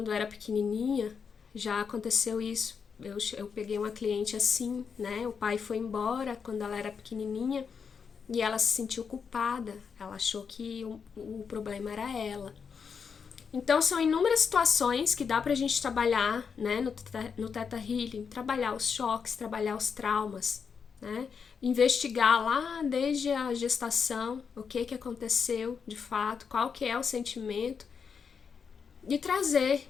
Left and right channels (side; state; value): right; quieter; 6.2 dB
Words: eu era pequenininha, já aconteceu isso. Eu peguei uma cliente assim, né, o pai foi embora quando ela era pequenininha e ela se sentiu culpada, ela achou que o problema era ela. Então, são inúmeras situações que dá pra gente trabalhar, né, no Theta Healing, trabalhar os choques, trabalhar os traumas, né, investigar lá desde a gestação, o que aconteceu de fato, qual que é o sentimento, e trazer,